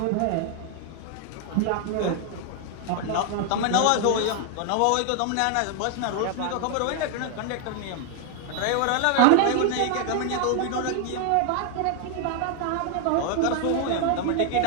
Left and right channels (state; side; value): different; both; correlation 0.00